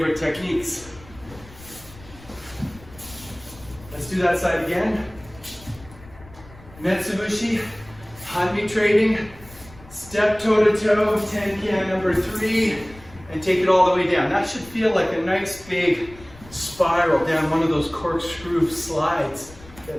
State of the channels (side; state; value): left; noise; rumble, 21 dB below the sound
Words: techniques. Let's do that side again. Metsubushi, Hanmi trading, step toe to toe, tenkan number 3, and take it all the way down. That should feel like a nice big spiral down one of those corkscrew slides